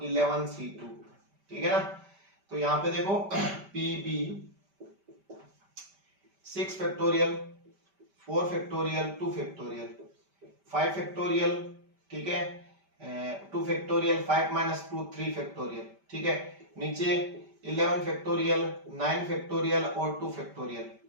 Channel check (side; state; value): left; late; 5.1 ms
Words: 11c2। ठीक है ना, तो यहां पे देखो PB 6 factorial 4 factorial 2 factorial 5 factorial. ठीक है, 2 फैक्टोरियल 5 माइनस 2 3 फैक्टोरियल। ठीक है, नीचे 11 फैक्टोरियल 9 फैक्टोरियल और 2 फैक्टोरियल।